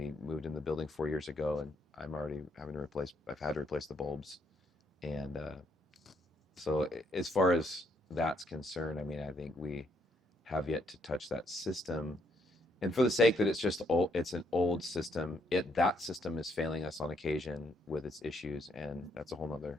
moved in the building 4 years ago, and I'm already having to replace. I've had to replace the bulbs, and so as far as that's concerned, I mean, I think we have yet to touch that system. And for the sake that it's just old, it's an old system. That system is failing us on occasion with its issues, and that's a whole nother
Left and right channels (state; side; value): normal; both; correlation 0.72